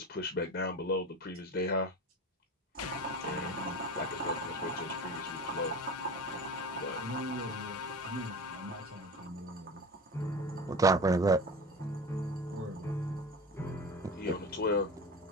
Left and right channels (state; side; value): normal; both; correlation 0.31